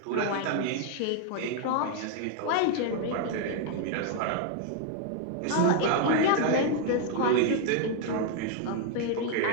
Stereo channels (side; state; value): both; different; correlation 0.00